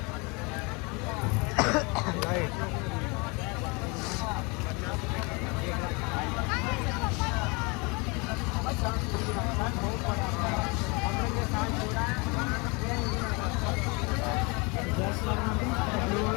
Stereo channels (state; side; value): quieter; right; 28.9 dB